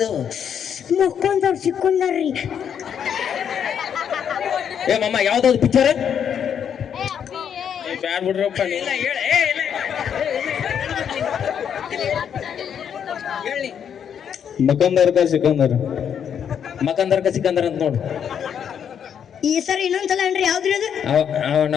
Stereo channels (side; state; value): right; quieter; 8.2 dB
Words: ಮುಕ್ಕೊಂದವ್ರು ಸಿಕ್ಕೊಂಡಾರ್ರಿ ಮಮ್ಮ ಯಾವ್ದಾವ್ದು ಪಿಕ್ಚರ್ ಬ್ಯಾಡ್ ಬಿಡ್ರಪ್ಪ ಮಕಂದರ್ಕ ಸಿಕಂದರ್ ಅಂತ ನೋಡು ಈ ಸರ ಇನ್ನೊಂದ್ಸಲ ಅನ್ರಿ ಯಾವ್ದ್ರಿ ಅದು